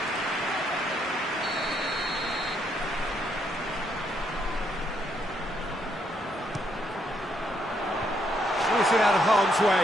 It out of harm's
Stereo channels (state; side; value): normal; both; correlation 0.74